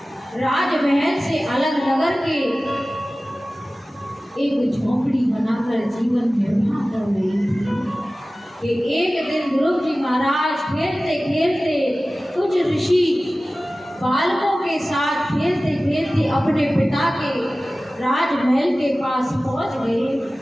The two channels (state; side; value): normal; both; correlation 0.97